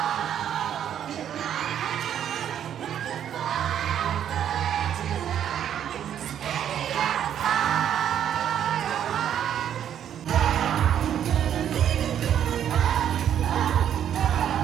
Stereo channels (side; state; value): left; quieter; 9.8 dB